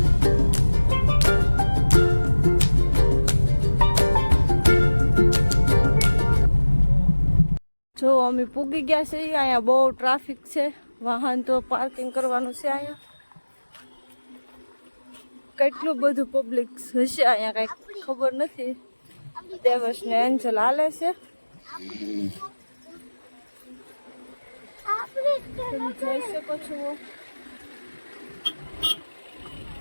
જો અમે પૂગી ગયા છે. અહીંયા બહુ ટ્રાફિક છે, વાહન તો પાર્કિંગ કરવાનું છે. અહીંયા કેટલું બધું પબ્લિક હશે, અહીંયા કઈ ખબર નથી. દેવસ ને એન્જલ હાલે છે. તમે જોઈ શકો છો.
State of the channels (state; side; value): inverted; both; correlation -1.00